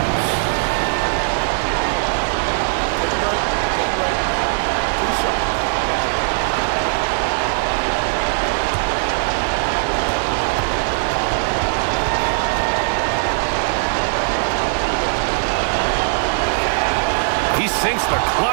He sinks the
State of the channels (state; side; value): silent; left; digital silence